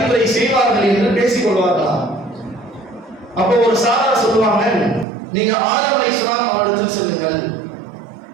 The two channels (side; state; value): left; drops out; at 5.1 s